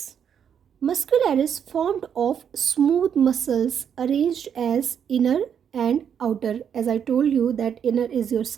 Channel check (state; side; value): quieter; left; 8.1 dB